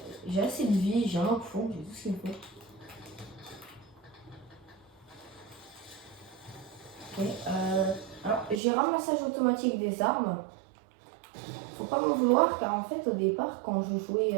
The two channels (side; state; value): left; drops out; at 8.6 s